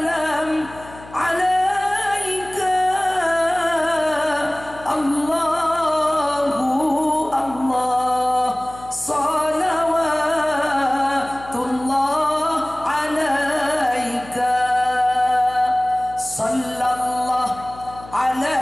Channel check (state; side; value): noise; left; hum, 19 dB below the sound